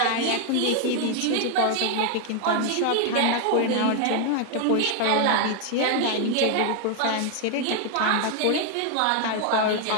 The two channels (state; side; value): different; both; correlation 0.00